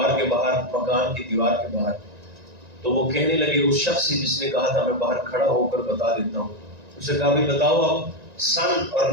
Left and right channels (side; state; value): left; late; 1.9 ms